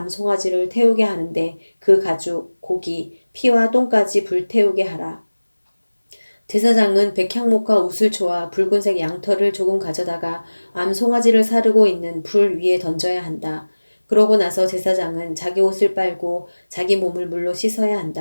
태우게 하는데 그 가죽, 고기, 피와 똥까지 불태우게 하라. 제사장은 백향목과 우슬초와 붉은색 양털을 조금 가져다가 암송아지를 사르고 있는 불 위에 던져야 한다. 그러고 나서 제사장은 자기 옷을 빨고 자기 몸을 물로 씻어야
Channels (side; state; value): both; inverted; correlation -1.00